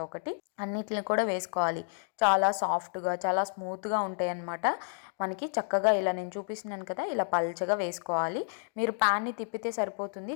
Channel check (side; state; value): right; silent; digital silence